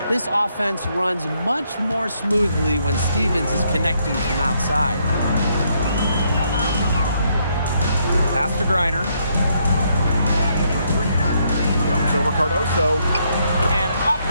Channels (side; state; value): both; inverted; correlation -0.73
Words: This offense runs much more smoothly when Stevens is connecting from outside. Pass to Griner. Comes over Cardoso. And off